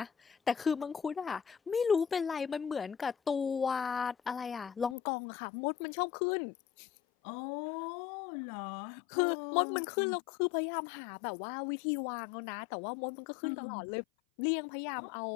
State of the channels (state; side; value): drops out; right; at 5.0 s